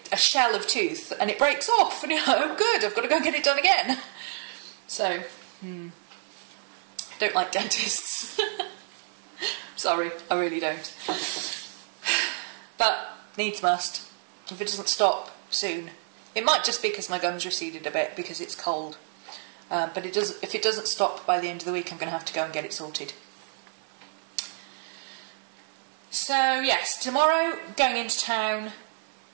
a shell of tooth, and it breaks off, and you're like, oh good, I've got to go get it done again. So, don't like dentists. Sorry, I really don't. But, needs must. If it doesn't stop soon. It might just be because my gums receded a bit, because it's cold. But if it doesn't stop by the end of the week, I'm going to have to go and get it sorted. So, yes, tomorrow, going into town,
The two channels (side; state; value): left; silent; 59 dB below the other